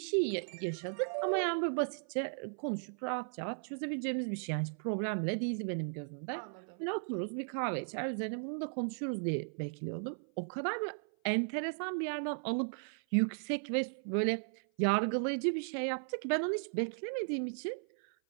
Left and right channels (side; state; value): left; silent; 54 dB below the other